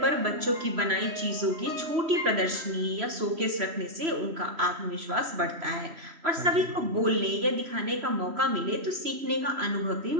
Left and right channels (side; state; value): left; late; 3.0 ms